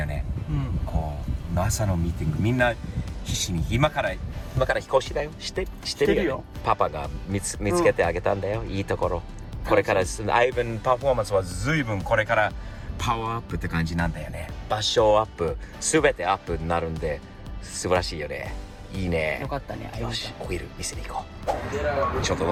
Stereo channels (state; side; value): identical; both; correlation 1.00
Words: ね。こう朝のミーティング、みんな必死に今から引っ越しだよ。してるよ。パパが見つけてあげたんだよ、いいところ。これからアイブンパフォーマンスは随分これからパワーアップって感じなんだよね。場所アップ、すべてアップになるんで素晴らしいよね。いいね。よかったね。よし、オイル見せに行こう。ちょっと